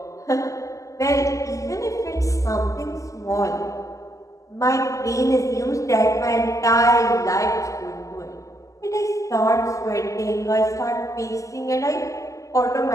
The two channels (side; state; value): right; late; 0.16 ms